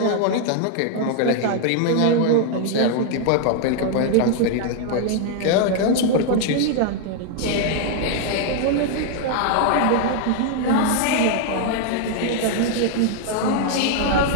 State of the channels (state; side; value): different; both; correlation 0.00